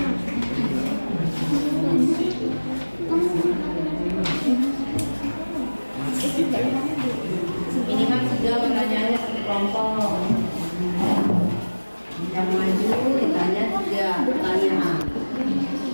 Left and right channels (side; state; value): both; inverted; correlation -1.00